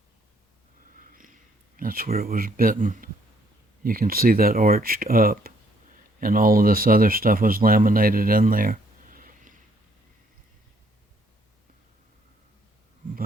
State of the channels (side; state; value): both; normal; correlation 0.67